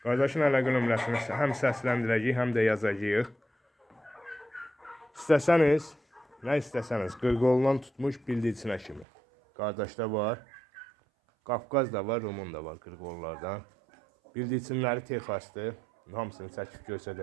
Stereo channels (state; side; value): drops out; left; at 9.1 s